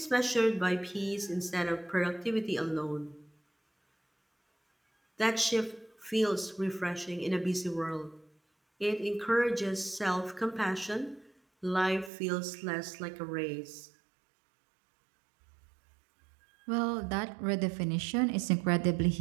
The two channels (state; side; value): drops out; left; at 12.1 s